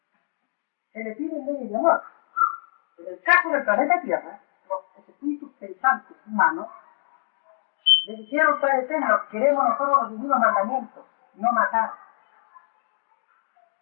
se le pide leyes de amor. En el caso del planeta Tierra, los espíritus pensantes humanos le dijeron al Eterno: queremos nosotros los divinos mandamientos, no matar,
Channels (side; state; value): right; silent; digital silence